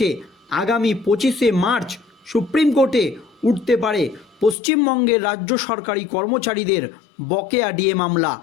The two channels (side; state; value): right; drops out; at 4.5 s